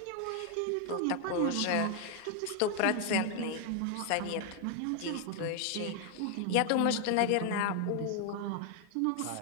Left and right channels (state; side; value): different; both; correlation 0.00